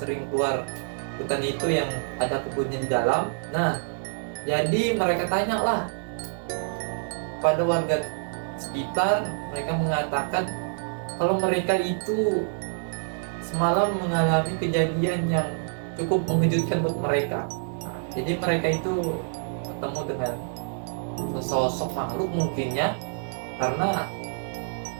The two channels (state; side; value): silent; left; digital silence